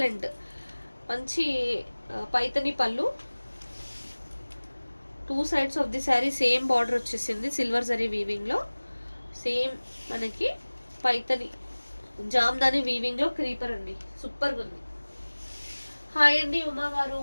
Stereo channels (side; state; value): both; inverted; correlation -1.00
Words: మంచి పైతని పళ్ళు, 2 sides of the sari same border వచ్చేసింది సిల్వర్ జరీ వీవింగ్లో. సేమ్ మనకి పైతని జామ్దాని వీవింగ్ లో క్రీపర్ అండి, సూపర్ గా ఉంది. హాయ్ అండి ఉమా గారు,